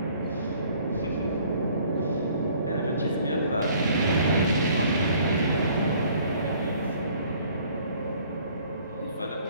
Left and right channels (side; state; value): both; inverted; correlation -0.57